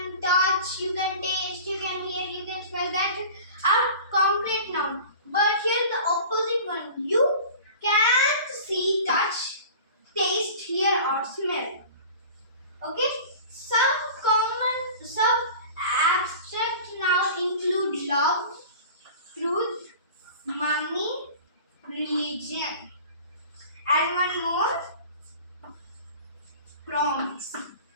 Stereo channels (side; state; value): both; inverted; correlation -0.40